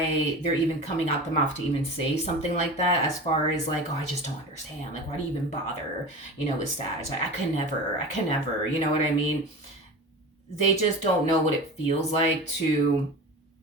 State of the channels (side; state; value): both; normal; correlation 0.31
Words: they're even coming out the mouth to even say something like that, as far as like, oh, I just don't understand. Like, why do you even bother, with Sag? Like, I can never, you know what I mean? They just don't know what it feels like to